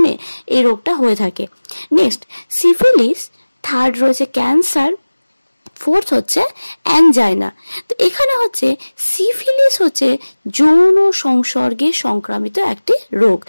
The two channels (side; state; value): both; inverted; correlation -1.00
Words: এই রোগটা হয়ে থাকে। নেক্সট সিফিলিস, থার্ড রয়েছে ক্যান্সার, ফোর্থ হচ্ছে অ্যানজাইনা। তো এখানে হচ্ছে সিফিলিস হচ্ছে যৌন সংসর্গে সংক্রামিত একটি রোগ,